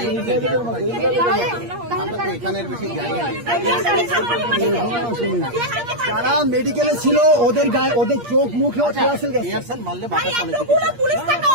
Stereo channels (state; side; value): late; left; 8.5 ms